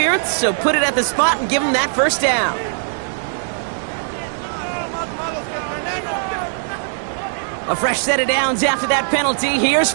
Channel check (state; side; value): silent; left; 66 dB below the other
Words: so put it at the spot and give him that first down. A fresh set of downs after that penalty. Here's